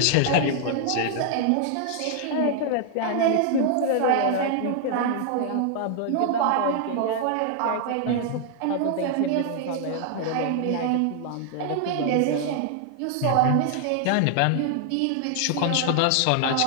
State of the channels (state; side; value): different; both; correlation 0.00